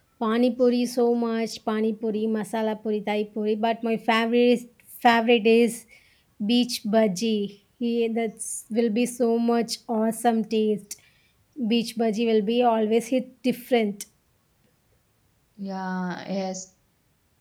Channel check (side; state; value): both; identical; correlation 1.00